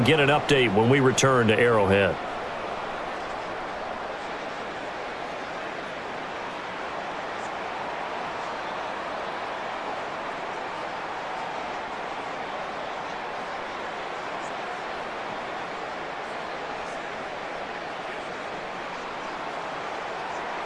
get an update when we return to Arrowhead.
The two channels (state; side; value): identical; both; correlation 1.00